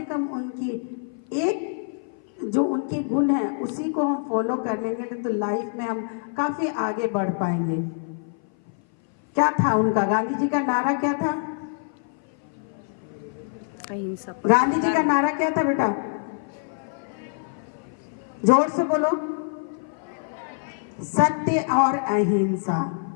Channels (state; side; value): silent; right; 57 dB below the other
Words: कम उनकी एक जो उनके गुण हैं उसी को हम फॉलो कर लेंगे तो लाइफ में हम काफी आगे बढ़ पाएंगे। क्या था उनका? गांधी जी का नारा क्या था? गांधी जी का नारा क्या था बेटा? जोर से बोलो। सत्य और अहिंसा।